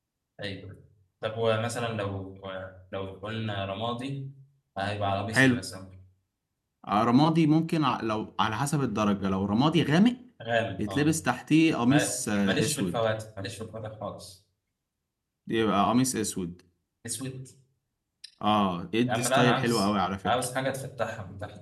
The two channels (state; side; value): identical; both; correlation 1.00